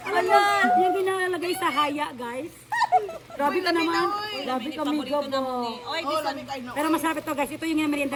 Alam niyo, yung ginalagay sa haya, guys. Grabe ka naman. Grabe kami, gabo. Pero masarap ito, guys. Ito yung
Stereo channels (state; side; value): identical; both; correlation 1.00